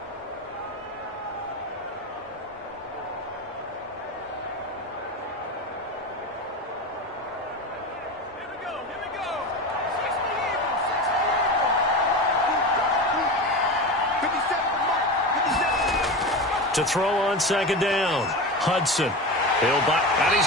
To throw on 2nd down. Hudson. He'll buy, and he's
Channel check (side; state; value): both; normal; correlation 0.24